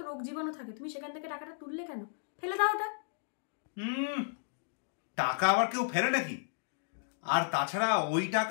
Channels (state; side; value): silent; right; digital silence